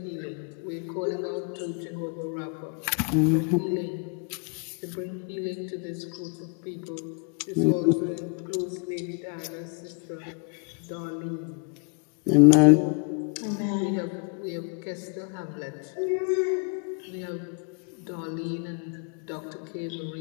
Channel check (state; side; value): quieter; right; 38.0 dB